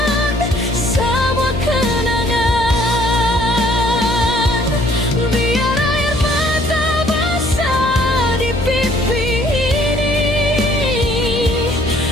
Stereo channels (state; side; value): noise; left; hum, 7 dB below the sound